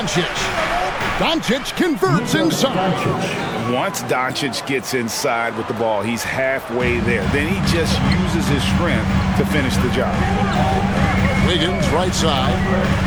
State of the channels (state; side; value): identical; both; correlation 1.00